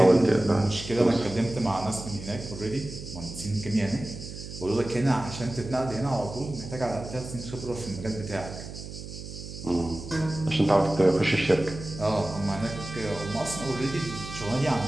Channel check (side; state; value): right; noise; hum, 11 dB below the sound